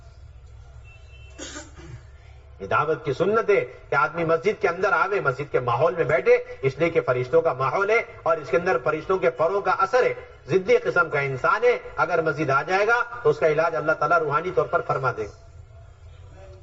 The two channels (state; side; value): identical; both; correlation 1.00